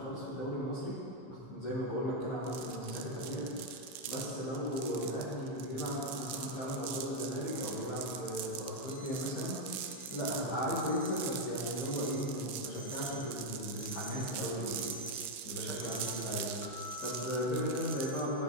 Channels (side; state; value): right; late; 15 ms